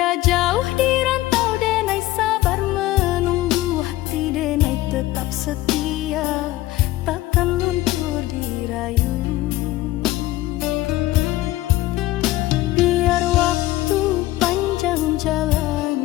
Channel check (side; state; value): right; quieter; 16.6 dB